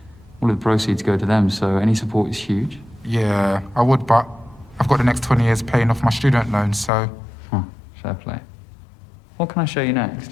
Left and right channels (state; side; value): drops out; right; at 6.9 s